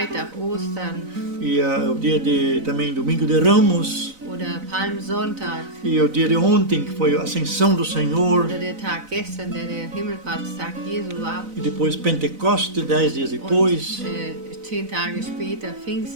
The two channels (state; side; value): late; left; 4.0 ms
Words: Ostern E o dia também Domingo de Ramos. Oder Palmsonntag. E o dia de ontem, que foi a ascensão do Senhor. Oder der Tag gestern, der Himmelfahrtstag Jesu war. E depois Pentecoste, 10 dias depois. Und 10 Tage später